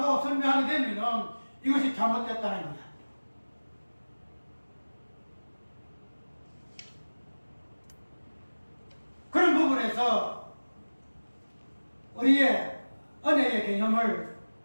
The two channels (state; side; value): inverted; both; correlation -1.00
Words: 설명하게 되면은 이것이 잘못됐다는 거야. 그런 부분에서 우리의 은혜의 개념을